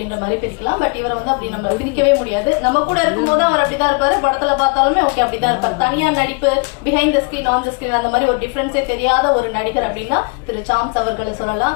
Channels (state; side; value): quieter; right; 33.8 dB